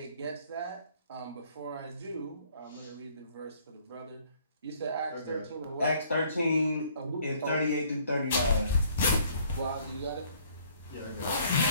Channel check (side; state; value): both; inverted; correlation -0.60